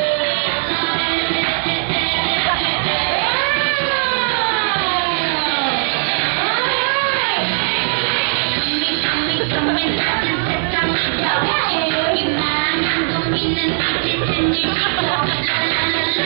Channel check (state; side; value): silent; left; 61 dB below the other